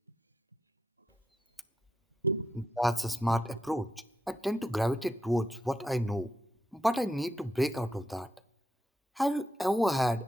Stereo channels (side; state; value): both; normal; correlation 0.83